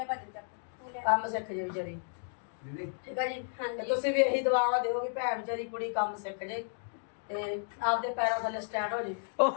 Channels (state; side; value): silent; right; digital silence